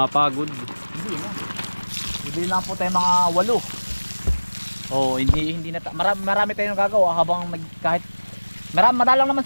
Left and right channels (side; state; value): both; inverted; correlation -1.00